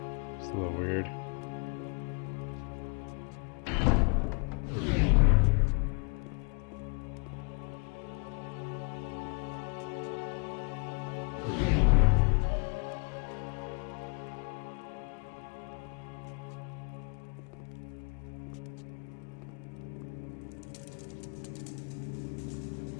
It's a little weird.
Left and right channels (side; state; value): right; quieter; 39.6 dB